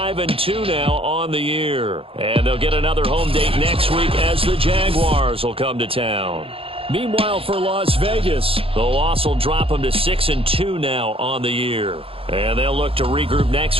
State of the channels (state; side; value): late; left; 0.27 ms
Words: now on the year. And they'll get another home date next week as the Jaguars will come to town. Meanwhile, for Las Vegas, the loss will drop them to 6-2 now on the year. And they'll look to regroup next